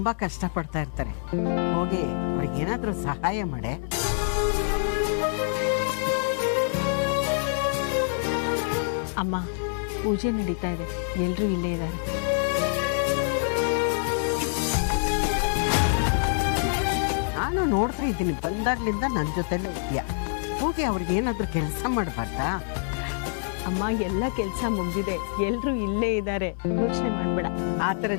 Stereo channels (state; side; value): silent; right; 61 dB below the other